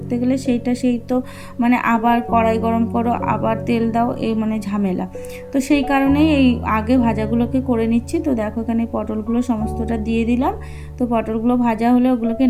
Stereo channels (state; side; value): identical; both; correlation 1.00